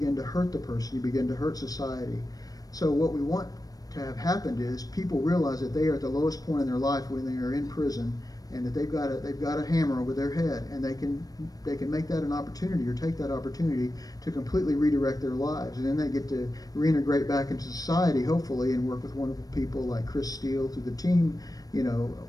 to hurt the person. You begin to hurt society. So what we want to have happened is people realize that they are at the lowest point in their life when they are in prison, and that they've got a hammer over their head, and they can make that an opportunity, or take that opportunity to completely redirect their lives, and then they get to reintegrate back into society, hopefully, and work with wonderful people like Chris Steele through the team,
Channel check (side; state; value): right; late; 0.18 ms